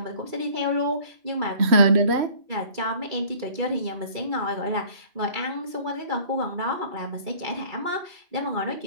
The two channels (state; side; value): late; left; 2.3 ms